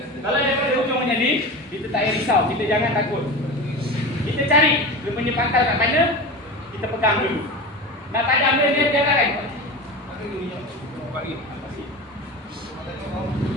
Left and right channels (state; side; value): normal; both; correlation 0.28